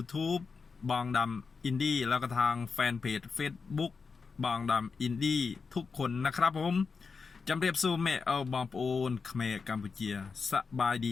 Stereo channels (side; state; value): right; quieter; 5.0 dB